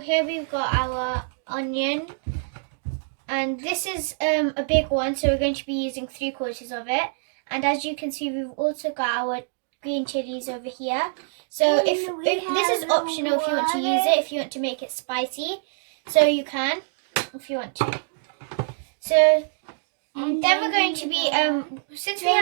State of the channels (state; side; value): silent; left; digital silence